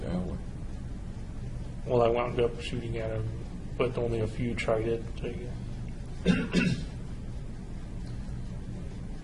aisleway? Well, I wound up shooting at them, but only a few tried it, I guess.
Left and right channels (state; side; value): identical; both; correlation 1.00